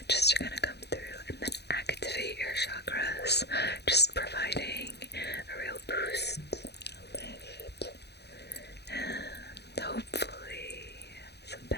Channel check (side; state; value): right; late; 0.48 ms